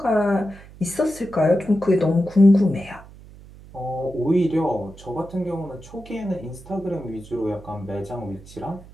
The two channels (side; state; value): right; noise; hum, 20 dB below the sound